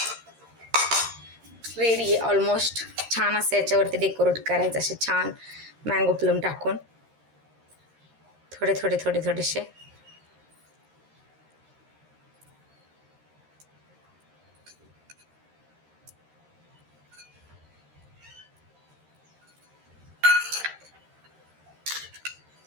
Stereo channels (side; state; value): left; late; 13 ms